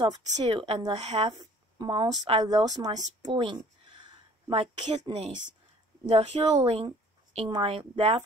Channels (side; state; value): both; normal; correlation 0.54